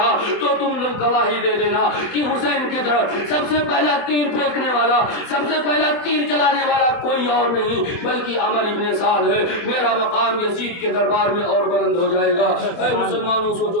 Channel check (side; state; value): right; late; 24 ms